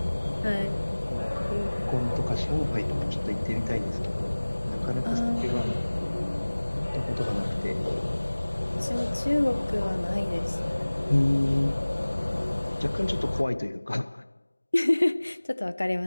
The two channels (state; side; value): inverted; both; correlation -1.00